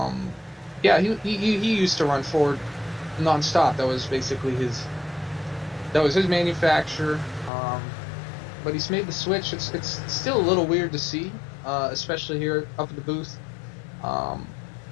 He used to run Ford nonstop. That was basically his manufacturer. But he's made the switch. It's still a little weird to see, especially here up at the booth.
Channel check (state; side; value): drops out; right; at 7.5 s